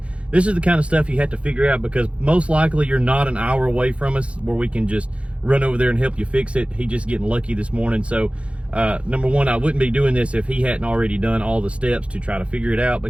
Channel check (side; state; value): left; late; 0.061 ms